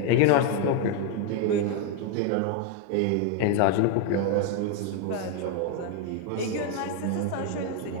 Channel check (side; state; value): both; different; correlation 0.01